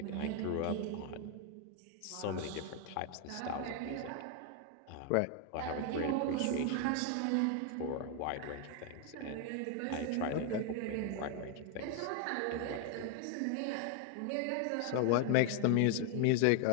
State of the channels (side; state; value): both; different; correlation 0.00